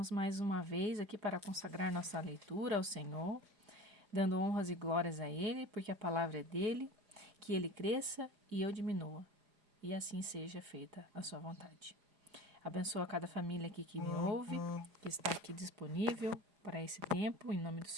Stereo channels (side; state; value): left; late; 4.9 ms